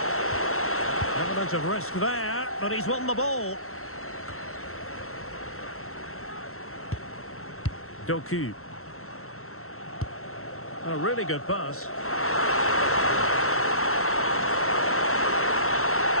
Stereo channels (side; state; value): right; late; 0.63 ms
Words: Element of risk there, but he's won the ball. Doku. A really good pass.